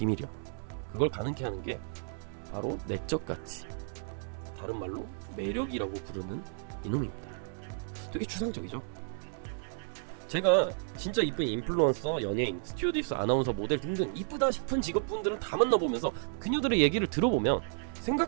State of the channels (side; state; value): left; silent; digital silence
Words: 그걸 가능케 하는 게 바로 내적 가치, 다른 말로 매력이라고 부르는 이놈입니다. 되게 추상적이죠? 제가 진짜 이쁜 인플루언서, 연예인, 스튜어디스, 아나운서, 모델 등등 이쁘다 싶은 직업분들은 다 만나보면서 그녀들의 얘기를 들어보면